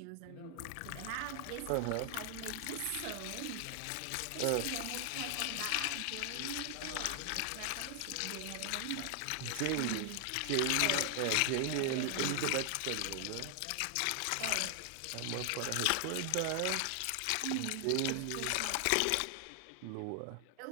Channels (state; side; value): different; both; correlation 0.00